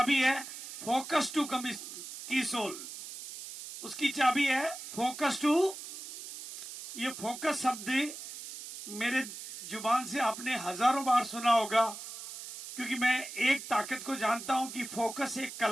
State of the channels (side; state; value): right; noise; hiss, 11 dB below the sound